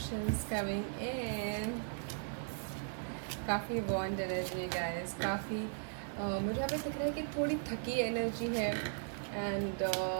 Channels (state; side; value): silent; left; 53 dB below the other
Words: coming in, काफ़ी बॉन्ड एनर्जी गाइस, काफ़ी मुझे यहाँ पे दिख रहा है कि थोड़ी थकी एनर्जी है, एंड